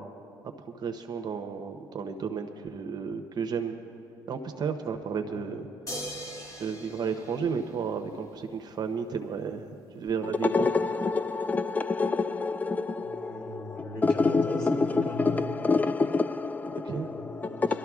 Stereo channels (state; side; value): normal; both; correlation 0.78